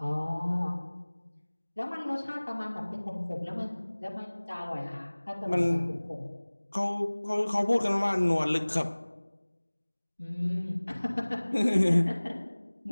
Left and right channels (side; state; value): both; inverted; correlation -1.00